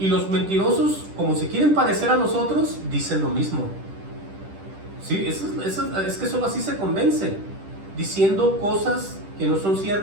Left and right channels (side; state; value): left; late; 10 ms